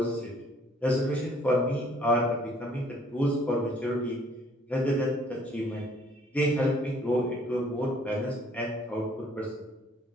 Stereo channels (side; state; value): both; normal; correlation 0.60